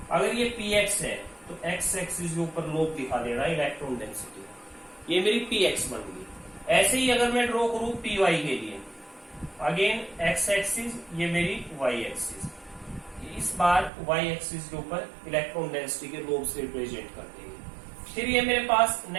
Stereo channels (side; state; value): left; drops out; at 13.9 s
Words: अगर ये px है तो x एक्सिस के ऊपर लोब दिखा दे रहा है इलेक्ट्रॉन डेंसिटी, ये मेरी px बन गई। ऐसे ही अगर मैं ड्रॉ करूं py के लिए, अगेन x एक्सिस, ये मेरी y एक्सिस, इस बार y एक्सिस के ऊपर इलेक्ट्रॉन डेंसिटी के लोब से रिप्रेजेंट कर देंगे। फिर ये मेरे पास